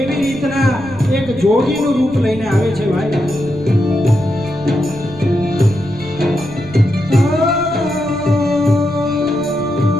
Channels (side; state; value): right; noise; rumble, 18 dB below the sound